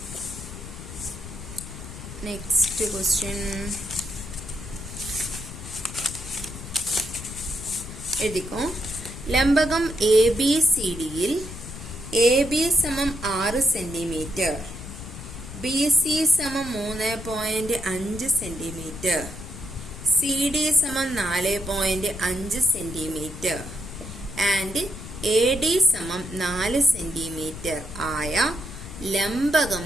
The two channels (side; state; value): left; noise; rumble, 12 dB below the sound